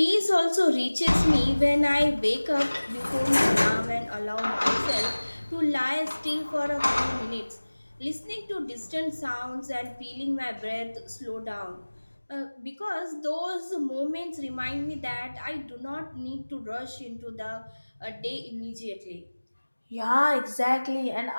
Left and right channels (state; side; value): inverted; both; correlation -1.00